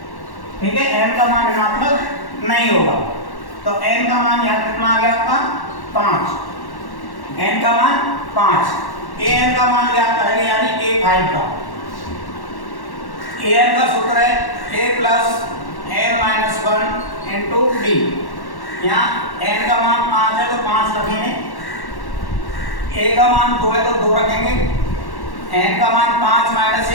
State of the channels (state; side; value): late; right; 1.1 ms